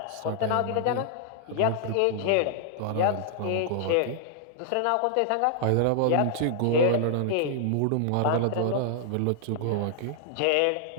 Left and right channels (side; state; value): both; different; correlation -0.01